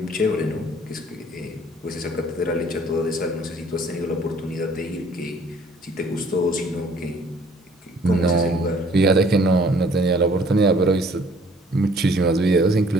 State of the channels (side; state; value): both; normal; correlation 0.58